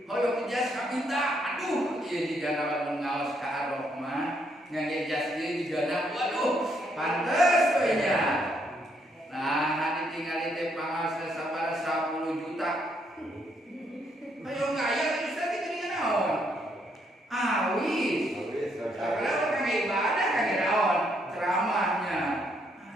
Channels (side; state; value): both; normal; correlation 0.73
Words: hoyong jas kapita aduh ieu digana lamun ngaos ka Ar-Rahman ngangge jas ieu digana waduh pantes we nya nah ditinggali teh pangaos sabaraha 10 juta hoyong aya geus teh geuningan naon awis kalau kangge ibadah kangge naon ceramahnya